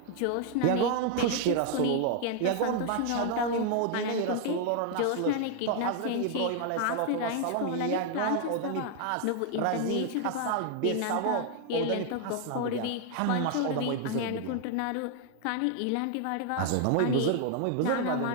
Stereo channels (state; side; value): different; both; correlation 0.00